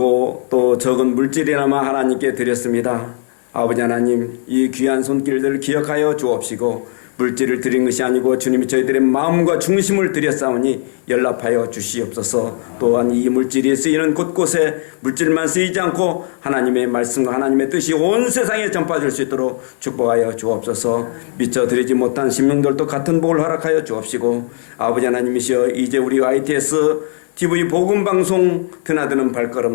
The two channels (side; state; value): right; silent; digital silence